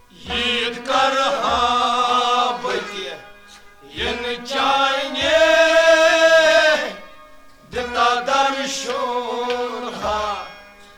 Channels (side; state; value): both; identical; correlation 1.00